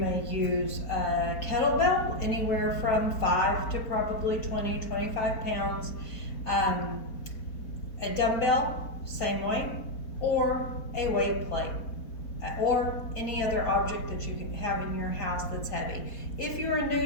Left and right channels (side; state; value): right; late; 4.2 ms